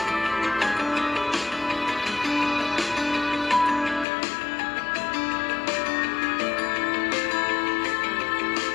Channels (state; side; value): drops out; right; at 4.0 s